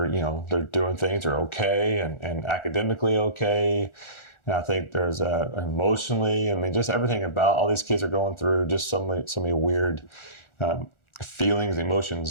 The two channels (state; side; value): late; right; 1.4 ms